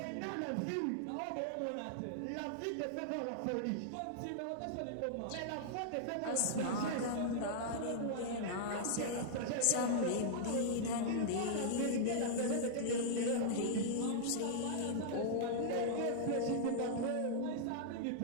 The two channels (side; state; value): both; different; correlation -0.01